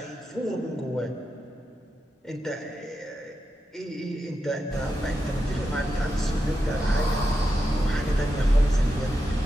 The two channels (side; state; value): both; normal; correlation 0.88